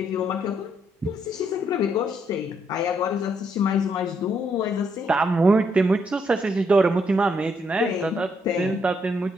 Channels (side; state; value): both; normal; correlation 0.74